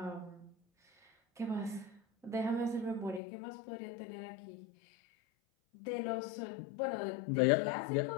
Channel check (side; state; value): right; drops out; at 3.2 s